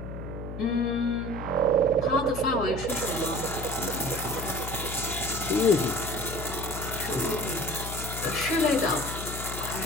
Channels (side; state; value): left; noise; hum, 8 dB below the sound